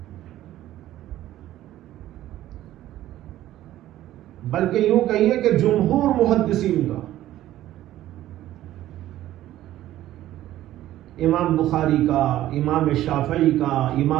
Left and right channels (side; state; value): left; quieter; 13.9 dB